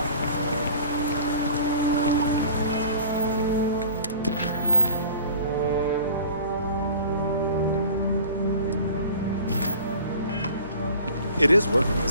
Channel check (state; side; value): inverted; both; correlation -0.43